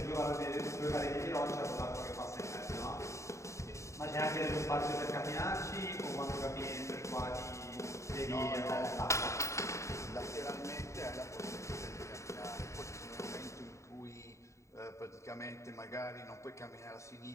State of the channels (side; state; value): right; late; 0.14 ms